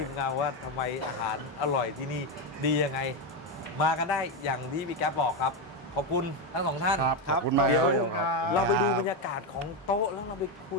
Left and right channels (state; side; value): normal; both; correlation 0.09